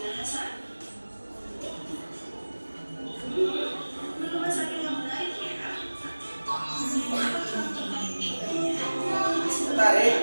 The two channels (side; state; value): both; inverted; correlation -1.00